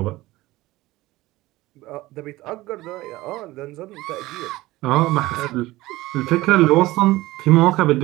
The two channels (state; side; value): quieter; left; 18.5 dB